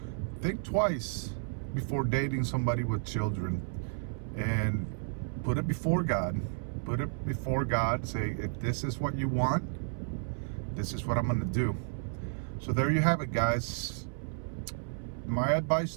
think twice before dating somebody with children, and put it before God. Put it before God. Say, if this is what you want, this is what I'm going to do. So there you have it, guys. My advice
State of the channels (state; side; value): silent; left; 56 dB below the other